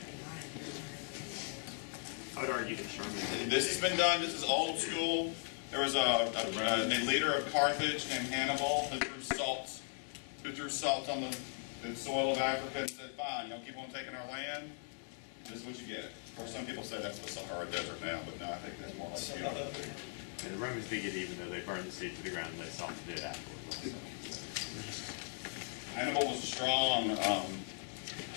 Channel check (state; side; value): silent; right; 52 dB below the other